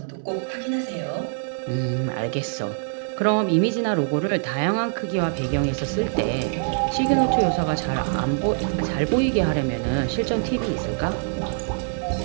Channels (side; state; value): left; silent; 63 dB below the other